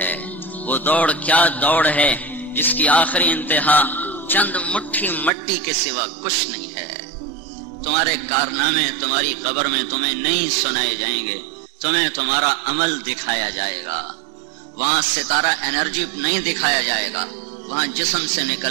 وہ دوڑ کیا دوڑ ہے جس کی آخری انتہا چند مٹھی مٹی کے سوا کچھ نہیں ہے. تمہارے کارنامے تمہاری قبر میں تمہیں نہیں سنائے جائیں گے، تمہیں تمہارا عمل دکھایا جائے گا. وہاں ستارہ انرجی نہیں دکھایا جائے گا، وہاں جسم سے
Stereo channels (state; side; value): drops out; left; at 5.3 s